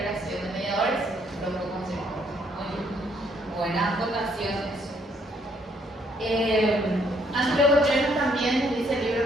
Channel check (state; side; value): normal; both; correlation 0.69